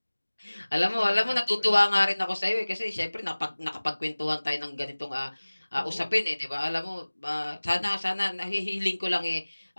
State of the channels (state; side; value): inverted; both; correlation -1.00